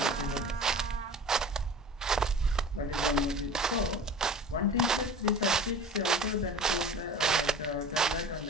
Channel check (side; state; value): both; normal; correlation 0.39